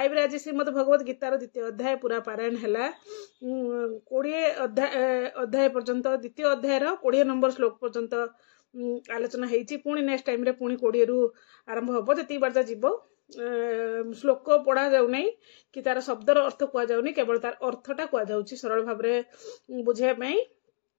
रे आज श्रीमद भगवत गीतार द्वितीय अध्याय पूरा पारायण है 20 अध्याय पर्यंत द्वितीय अध्यायर 20 नंबर श्लोक पर्यंत आलोचना होती। पुणी नेक्स्ट टाइम रे पुणी 20 रु आरंभ हम जी बार जीव श्लोक पढ़ा जाऊना कि तार शब्दर अर्थ कहुनी केवल तार अर्थटा कहुँ सरल भाव में बुझाई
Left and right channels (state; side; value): silent; right; digital silence